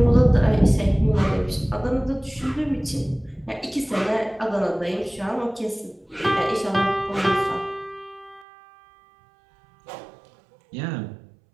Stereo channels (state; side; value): drops out; left; at 8.5 s